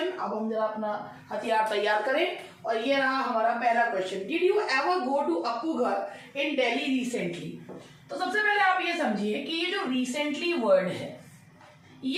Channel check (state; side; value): identical; both; correlation 1.00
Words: अब हम जरा अपना हथियार तैयार करें। और ये रहा हमारा पहला question, did you ever go to Appu Ghar in Delhi recently. तो सबसे पहले आप ये समझिए कि ये जो रिसेंटली वर्ड है,